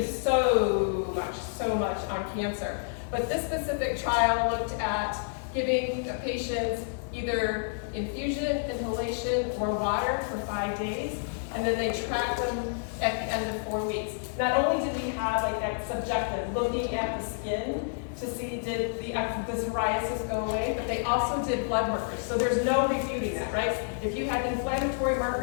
so much on cancer. But this specific trial looked at giving patients either infusion, inhalation, or water for 5 days, and then they tracked them at the end of 4 weeks. Not only did we have like that subjective, looking at the skin to see did the psoriasis go away, but they also did blood markers. So there's no refuting that, right? If you had inflammatory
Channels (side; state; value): right; silent; digital silence